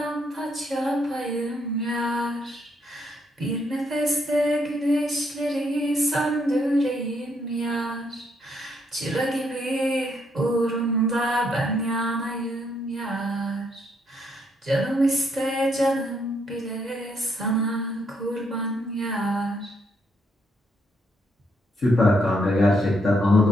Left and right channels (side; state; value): both; normal; correlation 0.74